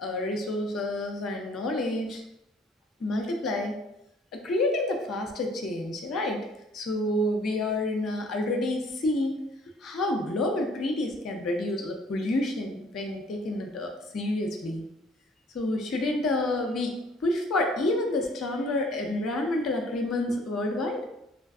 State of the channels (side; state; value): both; normal; correlation 0.57